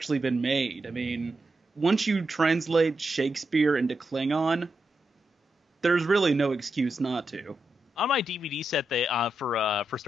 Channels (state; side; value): normal; both; correlation 0.86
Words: been made. I mean, once you translate Shakespeare into Klingon, there's really no excuse not to. On my DVD set, they for